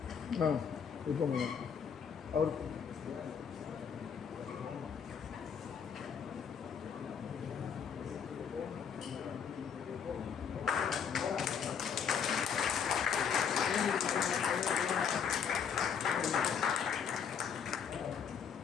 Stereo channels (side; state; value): right; quieter; 7.2 dB